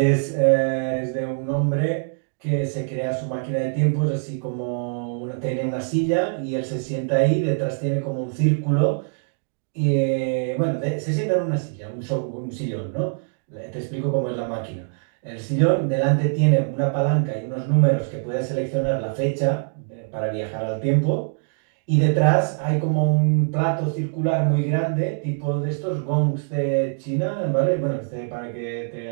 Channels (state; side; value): silent; left; digital silence